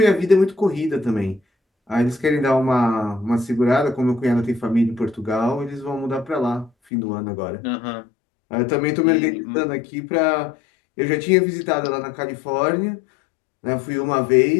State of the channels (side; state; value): right; drops out; at 6.7 s